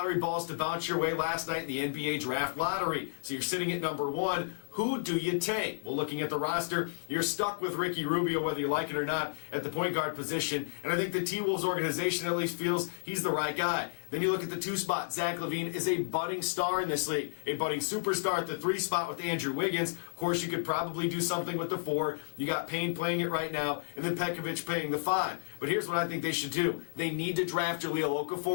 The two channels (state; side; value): silent; right; digital silence